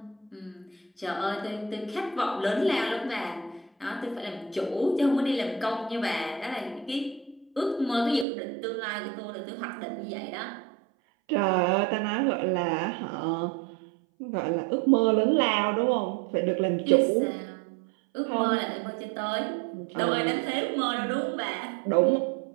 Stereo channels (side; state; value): left; drops out; at 8.2 s